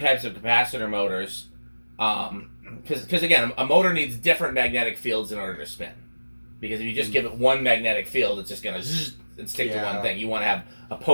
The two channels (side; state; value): both; inverted; correlation -1.00